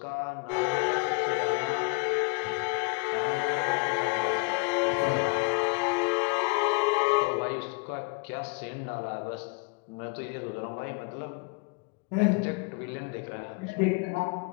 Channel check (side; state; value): right; quieter; 31.2 dB